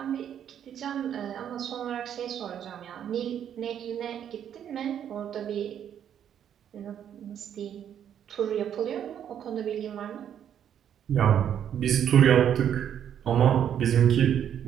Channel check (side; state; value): left; quieter; 9.4 dB